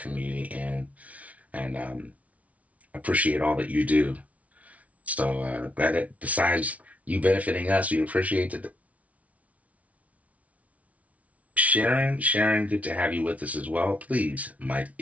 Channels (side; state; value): left; late; 0.067 ms